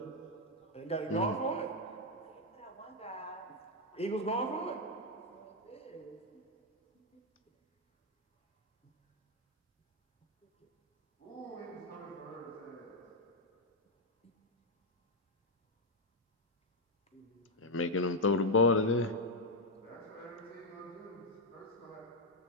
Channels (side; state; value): both; normal; correlation 0.01